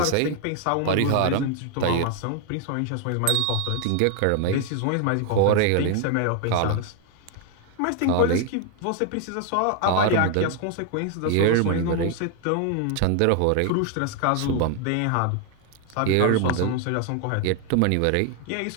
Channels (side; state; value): both; different; correlation 0.01